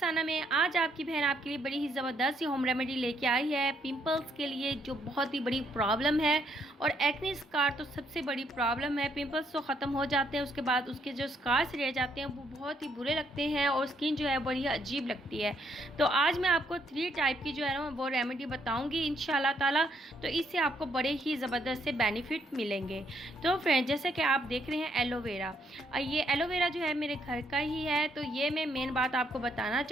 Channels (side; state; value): both; normal; correlation 0.72